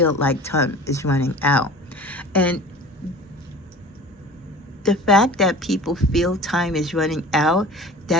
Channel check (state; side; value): normal; both; correlation 0.40